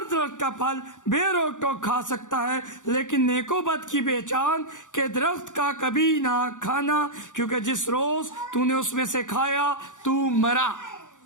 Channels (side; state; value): right; late; 0.86 ms